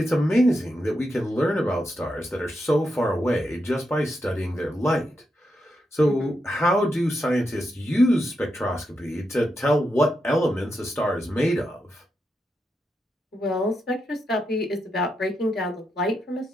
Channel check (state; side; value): normal; both; correlation 0.85